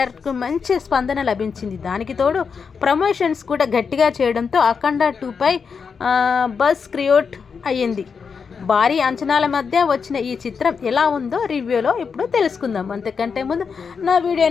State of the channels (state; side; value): quieter; right; 5.8 dB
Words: మంచి స్పందన లభించింది. దానికి తోడు ప్రమోషన్స్ కూడా గట్టిగా చేయడంతో అఖండ 2పై బజ్ క్రియేట్ అయ్యింది. భారీ అంచనాల మధ్య వచ్చిన ఈ చిత్రం ఎలా ఉందో రివ్యూలో ఇప్పుడు తెలుసుకుందాం. అంతకంటే ముందు నా